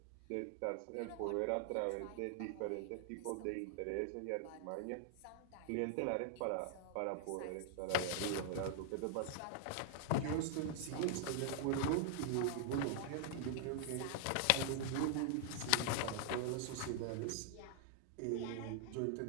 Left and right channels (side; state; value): both; different; correlation 0.00